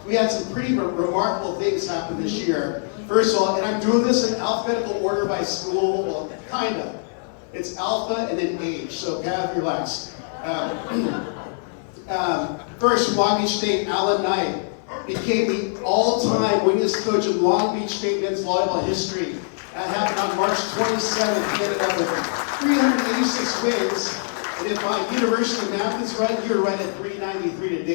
we had some pretty remarkable things happen this year. First of all, and I'm doing this in alphabetical order by school, well, kind of. It's alpha and then age, so have your relax. First, Long Beach State, Alan Knight became the all-time winningest coach of Long Beach State men's volleyball history. That happened on March 27th. He ended up with 386 wins. And if my university math is right, you're right at 393 to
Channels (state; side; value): silent; right; 58 dB below the other